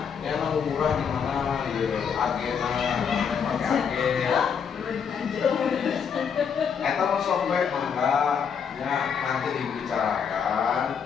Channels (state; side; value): quieter; right; 7.0 dB